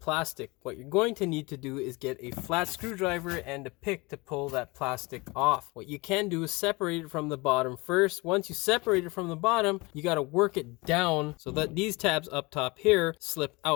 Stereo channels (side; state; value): right; quieter; 24.9 dB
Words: What you're going to need to do is get a flat screwdriver and a pick to pull that plastic off. What you can do is separate it from the bottom first. Once you separate it from the bottom, you got to work it down so that these tabs up top here slip